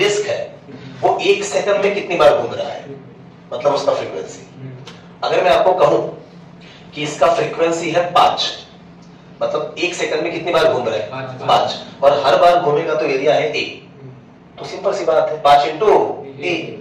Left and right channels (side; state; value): both; identical; correlation 1.00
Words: है वो 1 सेकंड में कितनी बार घूम रहा है, मतलब उसका फ्रीक्वेंसी। अगर मैं आपको कहूं कि इसका फ्रीक्वेंसी है 5, मतलब 1 सेकंड में कितनी बार घूम रहा है, 5, और हर बार घूमेगा तो एरिया है 1। तो सिंपल सी बात है, 5 × a,